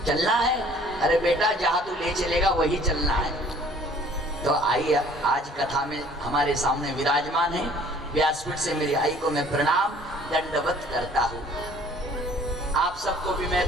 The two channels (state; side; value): normal; both; correlation 0.54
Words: चलना है? अरे बेटा, जहां तू ले चलेगा वही चलना है। तो आई आज कथा में हमारे सामने विराजमान है। व्यासपीठ से मेरी आई को मैं प्रणाम दंडवत करता हूँ। आप सबको भी